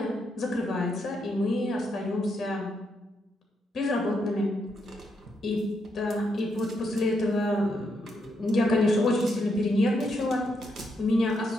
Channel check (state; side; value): normal; both; correlation 0.79